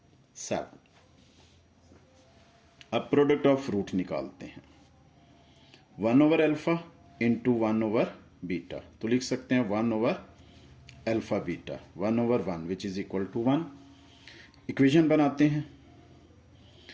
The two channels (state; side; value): identical; both; correlation 1.00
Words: अब प्रोडक्ट ऑफ रूट निकालते हैं, 1/अल्फा इंटू 1/बीटा। तो लिख सकते हैं 1/अल्फा beta 1/1 which is equal to 1। Equation बनाते हैं,